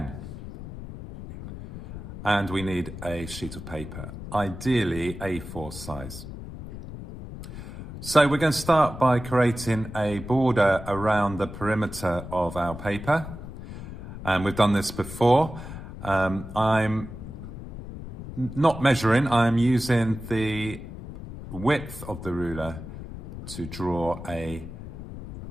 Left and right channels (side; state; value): left; noise; rumble, 11 dB below the sound